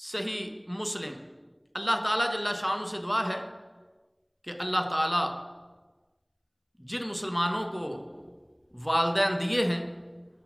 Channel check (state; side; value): identical; both; correlation 1.00